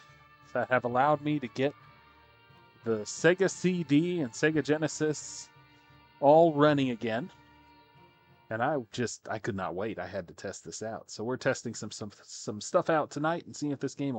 that have allowed me to get the Sega CD and Sega Genesis all running again. And I could not wait. I had to test this out. So we're testing some stuff out tonight and seeing if this game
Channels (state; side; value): identical; both; correlation 1.00